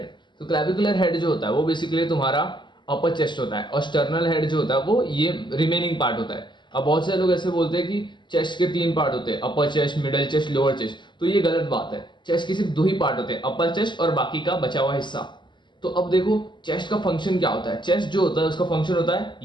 तो क्लैविकुलर हेड जो होता है वो बेसिकली तुम्हारा अपर चेस्ट होता है और स्टर्नल हेड जो होता है वो ये रिमेनिंग पार्ट होता है। अब बहुत सारे लोग ऐसे बोलते हैं कि चेस्ट के तीन पार्ट होते हैं, अपर chest, middle chest, lower chest. तो ये गलत बात है। चेस्ट के सिर्फ दो ही पार्ट होते हैं, अपर चेस्ट और बाकी का बचा हुआ हिस्सा। तो अब देखो चेस्ट का फंक्शन क्या होता है। चेस्ट जो होता है उसका फंक्शन होता है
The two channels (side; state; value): right; late; 0.22 ms